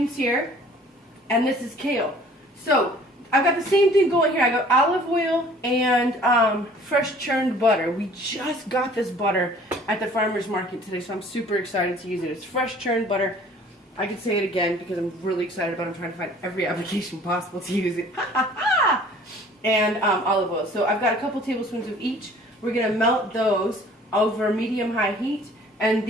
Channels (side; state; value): both; normal; correlation 0.52